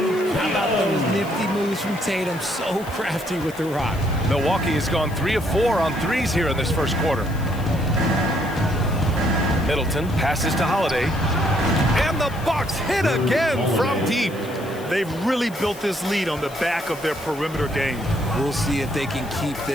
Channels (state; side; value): noise; left; hiss, 20 dB below the sound